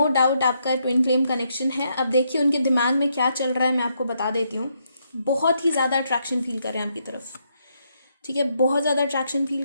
डाउट आपका ट्विन फ्लेम कनेक्शन है। अब देखिए उनके दिमाग में क्या चल रहा है, मैं आपको बता देती हूँ। बहुत ही ज़्यादा अट्रैक्शन फील कर रहे हैं आपकी तरफ, ठीक है। बहुत ज़्यादा अट्रैक्शन फील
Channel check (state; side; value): inverted; both; correlation -0.77